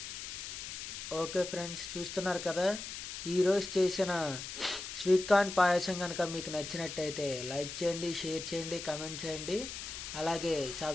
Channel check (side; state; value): left; noise; hiss, 8 dB below the sound